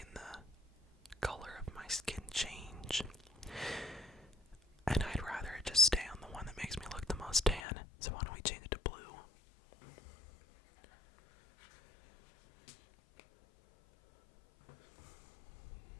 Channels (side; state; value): right; drops out; at 7.6 s